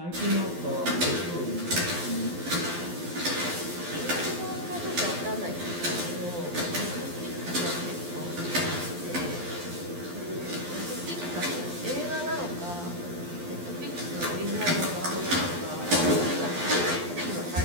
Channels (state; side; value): late; left; 12 ms